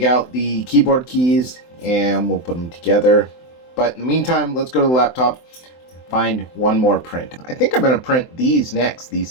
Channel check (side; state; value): right; late; 24 ms